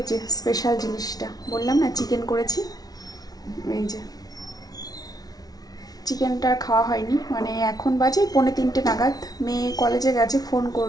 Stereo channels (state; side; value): late; right; 0.19 ms